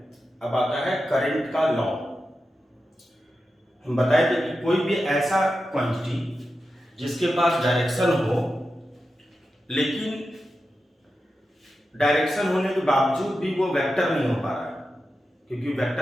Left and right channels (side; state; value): both; normal; correlation 0.91